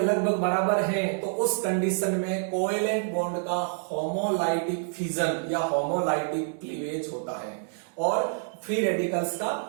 बराबर है, तो उस कंडीशन में कोवेलेंट बॉन्ड का होमोलाइटिक फिजन या होमोलाइटिक क्लीवेज होता है और फ्री रेडिकल्स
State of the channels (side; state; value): left; silent; digital silence